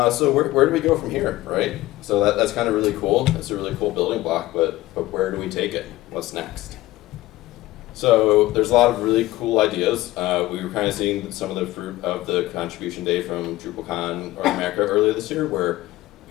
at. So where do we go from here, right? So that's kind of really cool. It's a really cool building block, but where do we take it? What's next? So there's a lot of really cool ideas. We were kind of seeing some of the fruit of the contribution day from DrupalCon or Einecker earlier this year, where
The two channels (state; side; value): quieter; right; 17.4 dB